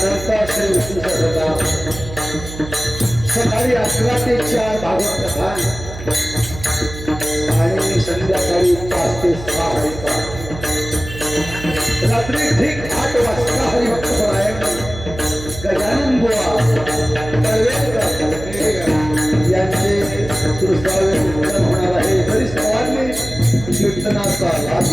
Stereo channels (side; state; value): right; noise; hum, 12 dB below the sound